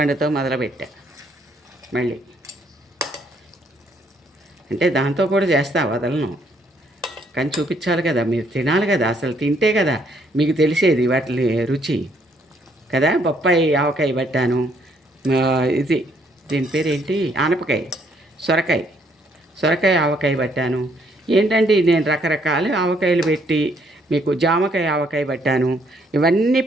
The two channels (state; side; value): normal; both; correlation 0.68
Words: మొదలుపెట్టా. మళ్ళీ అంటే దాంతో కూడా చేస్తా, వదలను, కానీ చూపించాలి కదా, మీరు తినాలి కదా, అసలు తింటే కదా మీకు తెలిసేది వాటి రుచి కదా. బొప్పాయి ఆవకాయ పట్టాను, ఇది దీని పేరు ఏంటి, ఆనపకాయ, సొరకాయ ఆవకాయ పట్టాను. ఏంటంటే నేను రకరకాల ఆవకాయలు పెట్టి మీకు జామకాయ ఆవకాయ పట్టాను, ఇవన్నీ